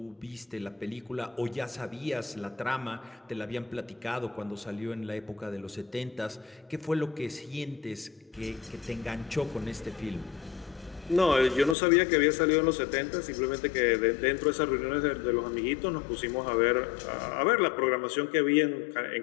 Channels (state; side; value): drops out; right; at 11.8 s